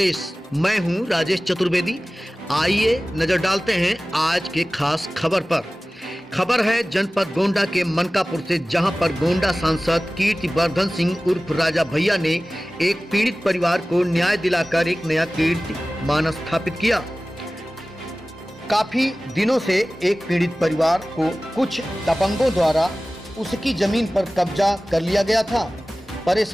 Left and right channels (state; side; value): normal; both; correlation 0.97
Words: मैं हूं राजेश चतुर्वेदी। आइए नजर डालते हैं आज के खास खबर पर। खबर है जनपद गोंडा के मनकापुर से, जहां पर गोंडा सांसद कीर्तिवर्धन सिंह उर्फ राजा भैया ने एक पीड़ित परिवार को न्याय दिलाकर एक नया कीर्तिमान स्थापित किया। काफी दिनों से एक पीड़ित परिवार को कुछ दबंगों द्वारा उसकी जमीन पर कब्जा कर लिया गया था।